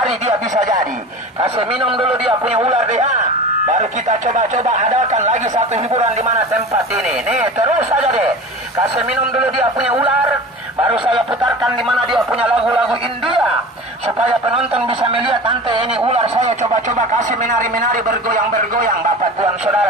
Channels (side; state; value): both; normal; correlation 0.35